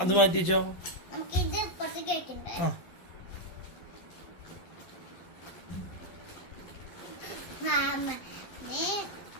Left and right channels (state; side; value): late; right; 12 ms